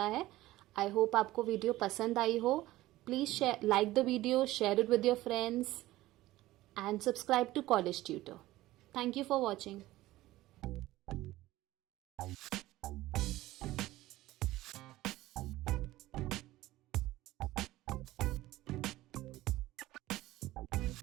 है। आई होप आपको वीडियो पसंद आई हो। Please like the video, share it with your friends, and subscribe to College Tutor. Thank you for watching.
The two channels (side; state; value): left; quieter; 16.7 dB